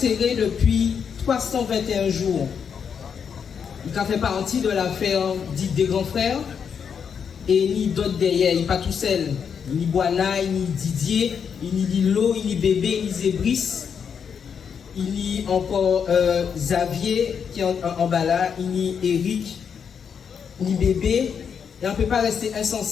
depuis 321 jours. Il a fait partie de l'affaire dite des grands frères et ni d'autres derrière. Il n'est pas tout seul. Ni Boana, ni Didier, ni Lilo, ni Bébé, ni Zébris. Il y a encore Xavier qui est en bas là, ni Eric, ni Bébé. Et on ne peut pas rester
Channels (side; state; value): right; quieter; 7.0 dB